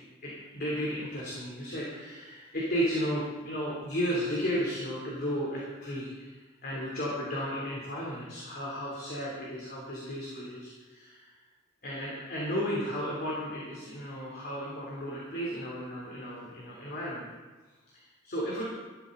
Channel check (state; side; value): normal; both; correlation 0.38